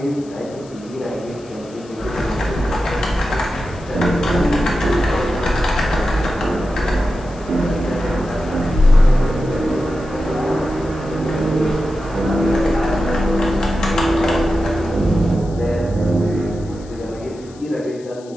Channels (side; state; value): left; noise; hiss, 25 dB below the sound